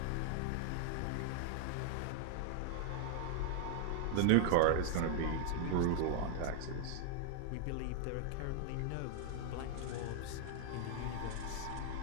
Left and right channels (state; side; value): different; both; correlation 0.00